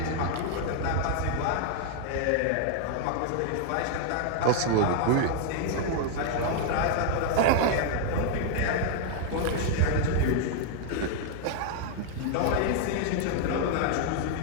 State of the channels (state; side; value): different; both; correlation 0.00